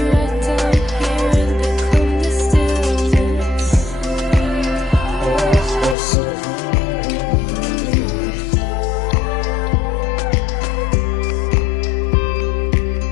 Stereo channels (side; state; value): right; drops out; at 6.0 s